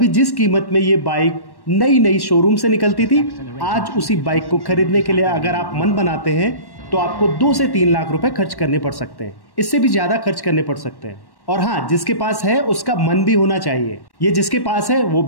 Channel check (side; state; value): right; late; 1.1 ms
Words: जिस कीमत में ये बाइक नई शोरूम से निकलती थी, आज उसी बाइक को खरीदने के लिए अगर आप मन बनाते हैं तो आपको 2 से 3 लाख रुपए खर्च करने पड़ सकते हैं। इससे भी ज्यादा खर्च करने पड़ सकते हैं। और हाँ, जिसके पास है उसका मन भी होना चाहिए। ये जिसके पास है वो